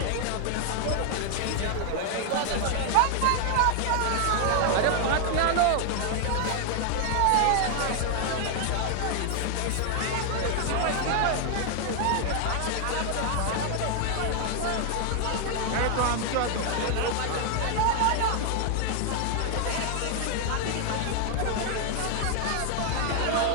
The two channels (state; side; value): different; both; correlation 0.00